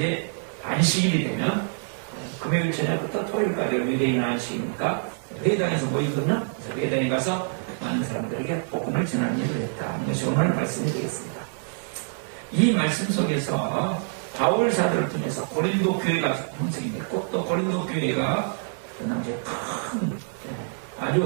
안식일이 되면 금요일 저녁부터 토요일까지 유대인 안식이니까 회당에서 모이거든요. 그래서 회당에 가서 많은 사람들에게 복음을 전하는 일을 했다. 이것이 오늘 말씀이 되겠습니다. 이 말씀 속에서 바울 사도를 통해서 고린도 교회가 형성이 됐고, 또 고린도 교회가 그 당시에 큰,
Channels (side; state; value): left; silent; digital silence